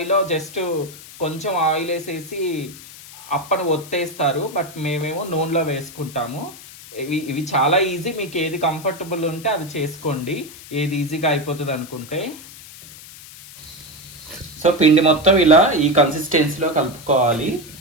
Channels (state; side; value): noise; left; hiss, 17 dB below the sound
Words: జస్ట్ కొంచెం ఆయిల్ వేసేసి అప్పను ఒత్తేస్తారు, బట్ మేమేమో నూనెలో వేసుకుంటాము. ఇవి చాలా ఈజీ, మీకు ఏది కంఫర్టబుల్ ఉంటే అది చేసుకోండి, ఏది ఈజీగా అయిపోతుంది అనుకుంటే. సో పిండి మొత్తం ఇలా ఈ కన్సిస్టెన్సీలో కలుపుకోవాలి.